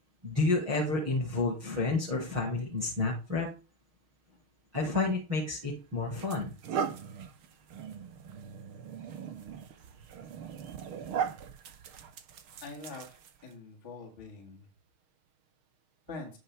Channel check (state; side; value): late; left; 6.5 ms